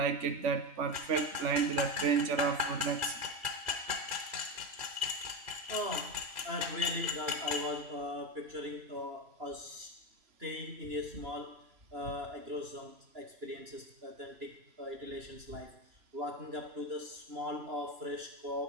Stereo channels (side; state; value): left; late; 3.0 ms